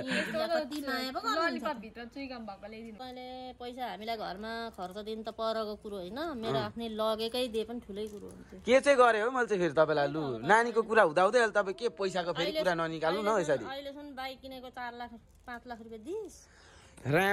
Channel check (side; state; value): both; identical; correlation 1.00